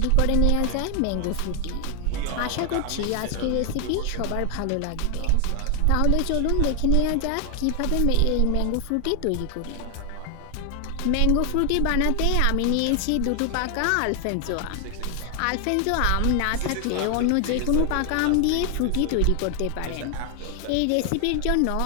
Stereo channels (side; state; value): both; different; correlation 0.00